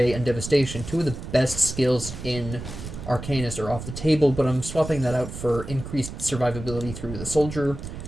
and Devastation, two of the best skills in Arcanist, are off the table, but I'm swapping that out for increased survivability through the soldier,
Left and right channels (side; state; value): right; noise; rumble, 10 dB below the sound